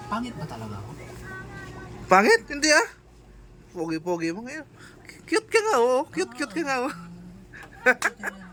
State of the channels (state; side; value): identical; both; correlation 1.00